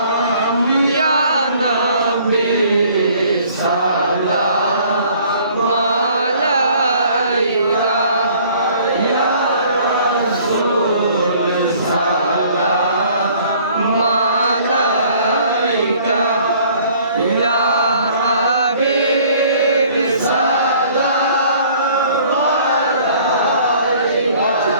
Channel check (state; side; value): inverted; both; correlation -0.56